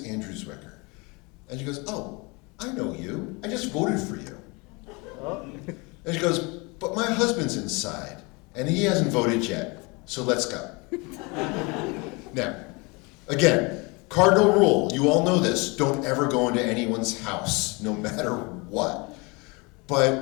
Andrew Zwicker. And she goes, oh, I know you. I just voted for you. And she goes, but my husband's inside, and he hasn't voted yet, so let's go. Now, again, Cardinal rule, you all know this, don't ever go into anyone's house, no matter what.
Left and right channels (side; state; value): right; quieter; 28.0 dB